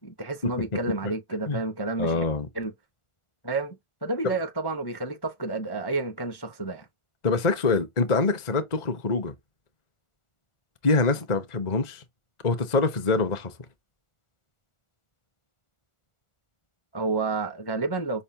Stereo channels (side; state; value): right; late; 1.4 ms